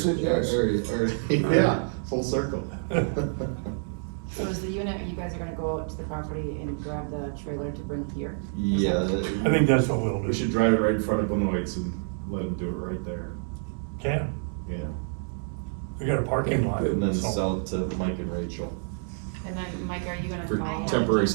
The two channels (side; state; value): left; silent; digital silence